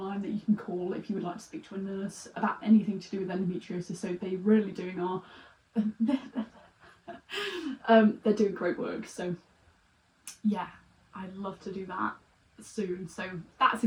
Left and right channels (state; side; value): identical; both; correlation 1.00